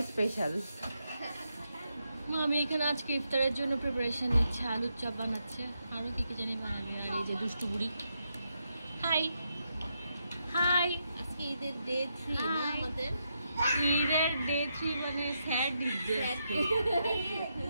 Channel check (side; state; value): both; inverted; correlation -0.82